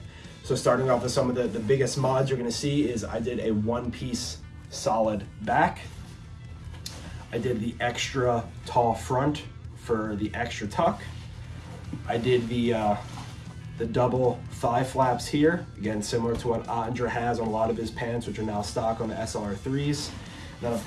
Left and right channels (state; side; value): identical; both; correlation 1.00